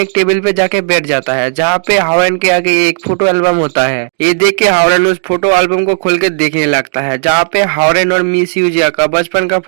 टेबल पे जाके बैठ जाता है, जहाँ पे हावरेन के आगे एक फोटो एल्बम होता है। ये देख के हावरेन उस फोटो एल्बम को खोल के देखने लगता है, जहाँ पे हावरेन और मिस यूजिया का बचपन का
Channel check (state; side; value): silent; left; digital silence